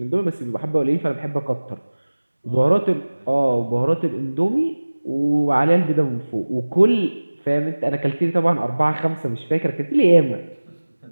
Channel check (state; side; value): inverted; both; correlation -1.00